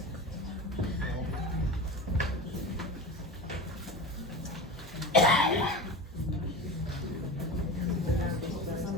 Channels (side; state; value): both; normal; correlation 0.28